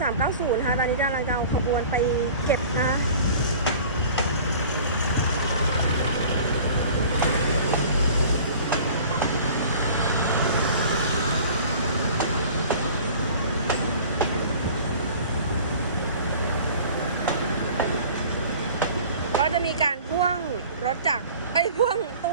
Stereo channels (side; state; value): both; inverted; correlation -0.44